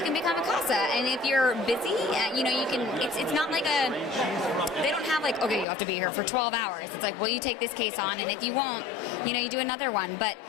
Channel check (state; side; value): drops out; right; at 5.7 s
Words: can become a CASA, and if you're busy, you can. It's not like they don't have okay, you have to be here for 12 hours. It's like, well, you take this case on, and if you won't, you do another one. But